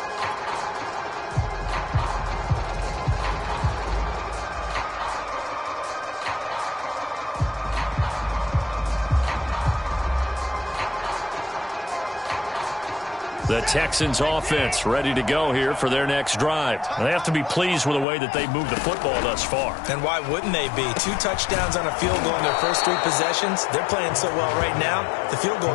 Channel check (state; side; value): drops out; right; at 18.1 s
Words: The Texans offense ready to go here for their next drive. They have to be pleased with the way that they've moved the football thus far. And why wouldn't they be? 2 touchdowns on a field goal in their first 3 possessions. They're playing so well right now, the field goal